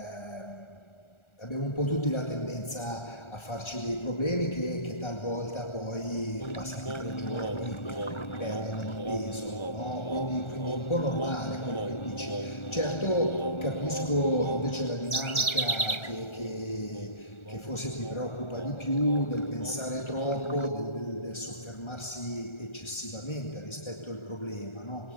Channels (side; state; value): right; late; 1.4 ms